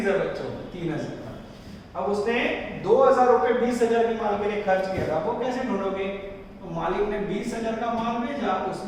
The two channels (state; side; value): identical; both; correlation 1.00